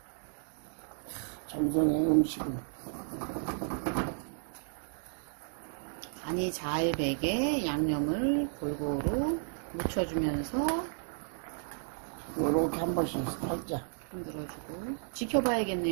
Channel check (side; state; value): left; silent; digital silence